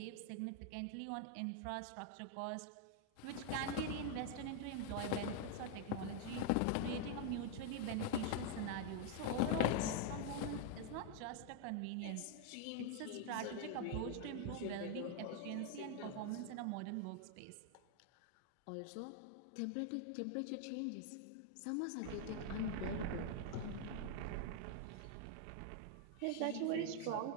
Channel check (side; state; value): both; different; correlation 0.00